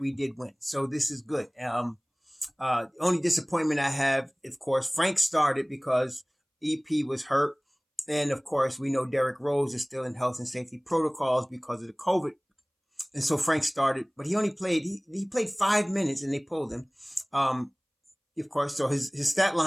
did win. So this is good. Only disappointment I have, of course, Frank started because EP was hurt. And of course, we know Derrick Rose is still in health and safety protocols because of the COVID. And so Frank started, but he only played, he played 5 minutes and they pulled him. Of course, so his stat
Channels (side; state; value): both; identical; correlation 1.00